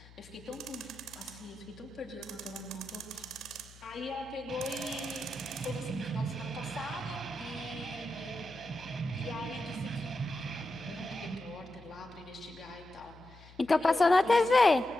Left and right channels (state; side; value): noise; left; hum, 21 dB below the sound